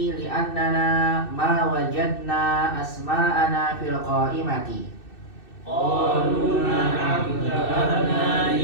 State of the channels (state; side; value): late; right; 2.6 ms